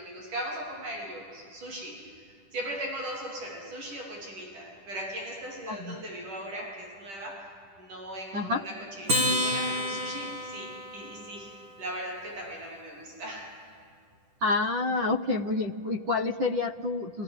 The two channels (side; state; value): left; late; 10 ms